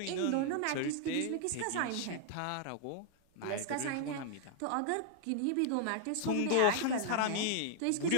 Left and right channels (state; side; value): different; both; correlation 0.00